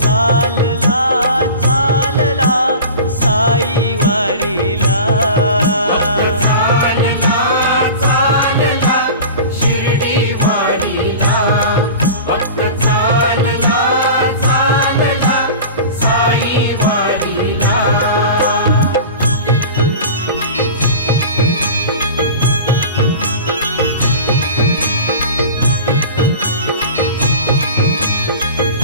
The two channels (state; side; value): inverted; both; correlation -0.35